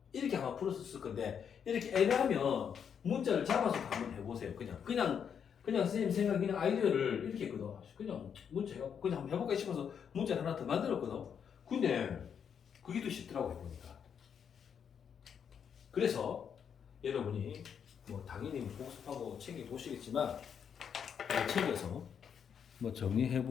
이렇게 아마 풀었을 건데 이렇게 애매하면 문자를 잡아서 한번 해보세요. 그냥 선생님 생각 그냥 아이디어를 이렇게 했거든. 그냥 문자 해갖고 그냥 한번 해볼까 싶어서 문자를 하나 더 만들었거든. 근데 그게 더 쉽더라고 해보니까. 그래서 여러분이 뭐 당연히 복습하고 챙겨 보시겠지만 챙겨서 뭐 정리해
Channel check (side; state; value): right; quieter; 7.6 dB